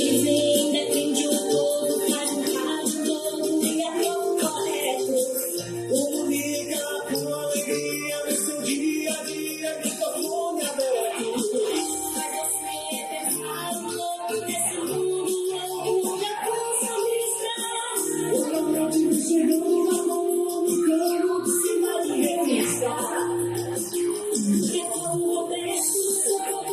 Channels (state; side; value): identical; both; correlation 1.00